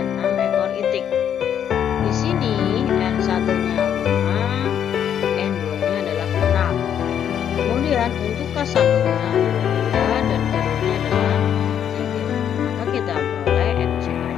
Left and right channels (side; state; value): right; quieter; 9.1 dB